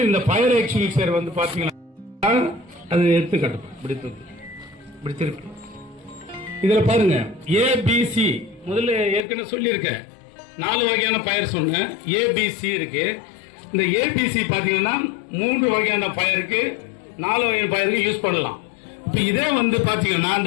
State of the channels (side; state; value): right; drops out; at 9.2 s